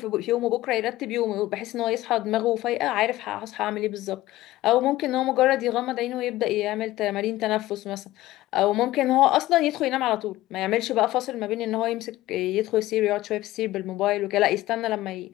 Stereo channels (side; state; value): right; quieter; 16.5 dB